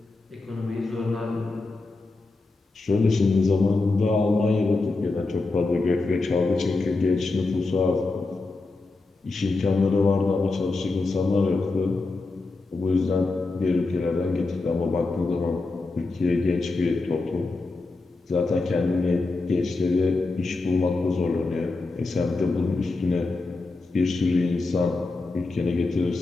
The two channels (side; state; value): right; quieter; 3.5 dB